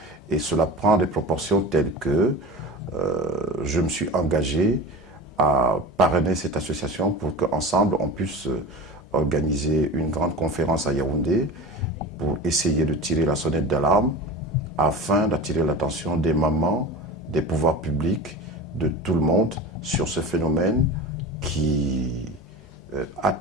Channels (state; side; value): normal; both; correlation 0.33